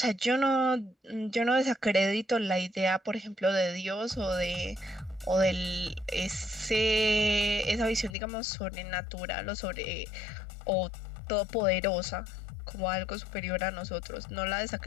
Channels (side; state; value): right; drops out; at 8.2 s